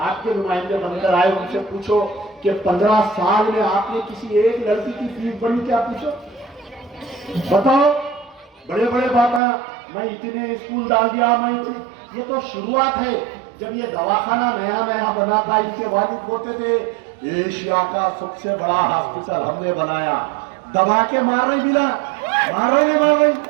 नुमाइंदे बनकर आए, उनसे पूछो कि 15 साल में आपने किसी एक लड़की की फीस भरी क्या? पूछो, बताओ। बड़े बड़े बातें, मैं इतने स्कूल डाल दिया, मैं ये तो शुरुआत है। जब ये दवाखाना नया नया बना था, इनके वालिद बोलते थे एशिया का सबसे बड़ा हॉस्पिटल हमने बनाया, दबा के मार रही मिला, मार रही।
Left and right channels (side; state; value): left; drops out; at 9.4 s